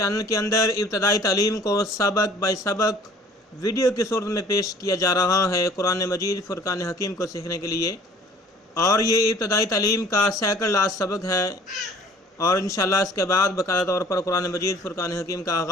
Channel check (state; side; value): normal; both; correlation 0.52